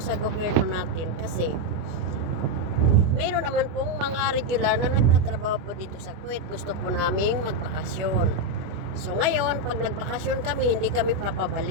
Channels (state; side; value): late; left; 25 ms